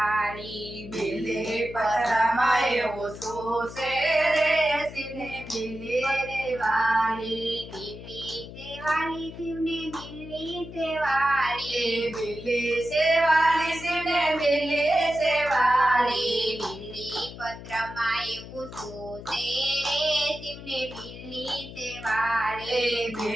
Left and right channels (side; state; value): left; noise; hum, 13 dB below the sound